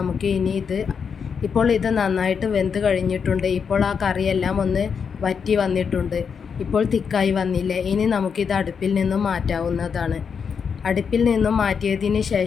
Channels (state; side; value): quieter; right; 6.4 dB